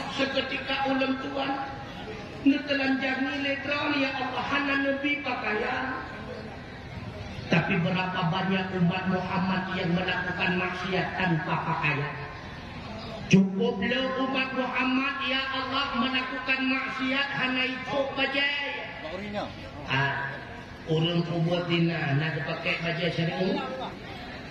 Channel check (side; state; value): both; identical; correlation 1.00